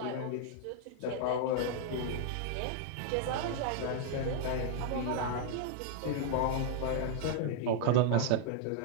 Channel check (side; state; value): both; different; correlation 0.00